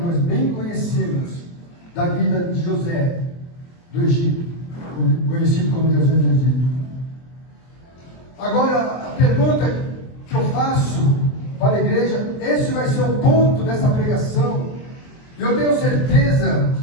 bem conhecemos da vida de José do Egito, conhecido como José do Egito. Agora, a pergunta que eu faço para a igreja, esse vai ser o ponto dessa pregação. Eu tenho certeza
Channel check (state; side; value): late; right; 23 ms